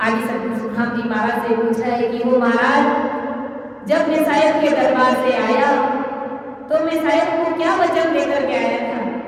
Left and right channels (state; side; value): identical; both; correlation 1.00